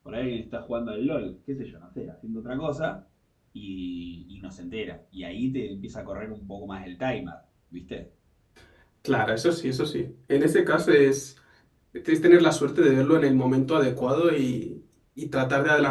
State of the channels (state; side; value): identical; both; correlation 1.00